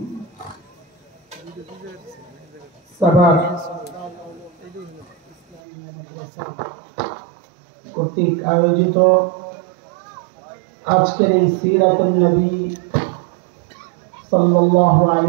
সাভার কর্তৃক আয়োজিত আজকের এই সিরাতুন নবী সাল্লাল্লাহু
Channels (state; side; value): drops out; left; at 5.6 s